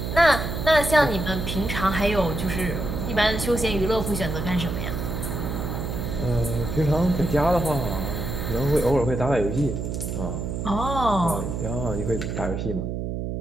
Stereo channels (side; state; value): right; noise; hum, 3 dB below the sound